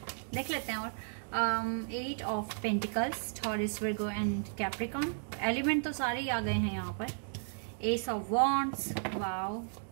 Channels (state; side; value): silent; left; digital silence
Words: देख लेते हैं। और 8 of pentacles, Taurus, Virgo and Capricorn. Element तो सारे ही आ गए हैं यहाँ पर। Ace of wands. वाओ,